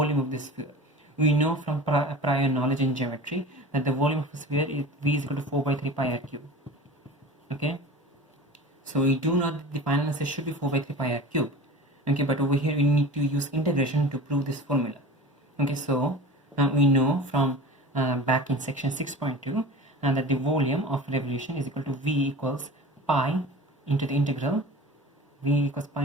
of this sphere. We know from prior knowledge in geometry that the volume of a sphere is v is equal to 4 by 3 pi r cube. Okay, so we do know that the final answer should be 4 by 3 pi r cube. Okay, but over here we need to use integration to prove this formula. Okay, so we know from back in section 6.2 that the volume of revolution is equal to v equals pi into the integral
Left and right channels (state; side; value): normal; both; correlation 0.36